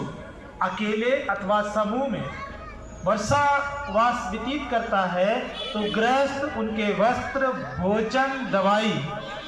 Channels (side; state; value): both; identical; correlation 1.00